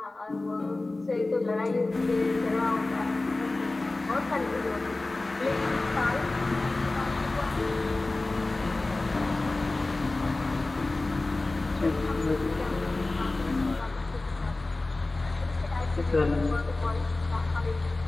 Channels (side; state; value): right; quieter; 3.1 dB